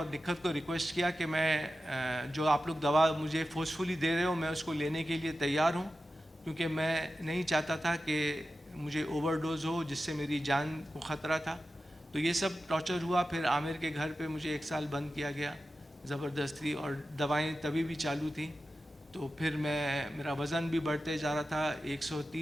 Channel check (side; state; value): both; normal; correlation 0.93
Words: निखत को रिक्वेस्ट किया कि मैं जो आप लोग दवा मुझे फोर्सफुली दे रहे हो, मैं उसको लेने के लिए तैयार हूँ, क्योंकि मैं नहीं चाहता था कि मुझे ओवरडोज हो जिससे मेरी जान को ख़तरा था। तो ये सब टॉर्चर हुआ। फिर आमिर के घर पे मुझे 1 साल बंद किया गया ज़बरदस्ती, और दवाएं तभी भी चालू थी। तो फिर मेरा वज़न भी बढ़ते जा रहा था,